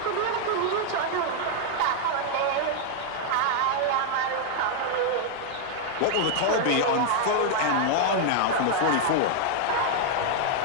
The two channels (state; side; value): different; both; correlation 0.00